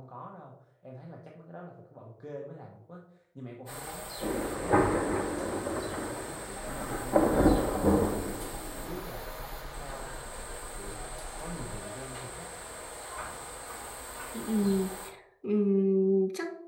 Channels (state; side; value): identical; both; correlation 1.00